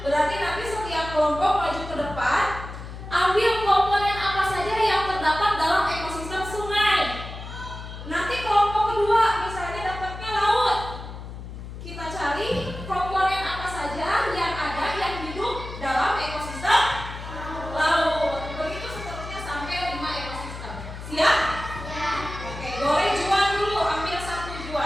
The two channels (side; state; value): left; noise; hum, 11 dB below the sound